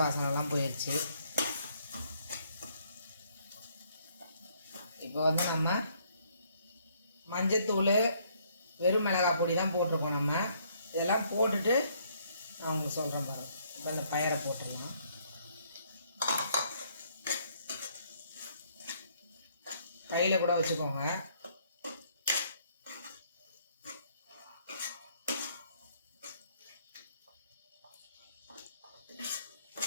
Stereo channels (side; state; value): both; inverted; correlation -0.67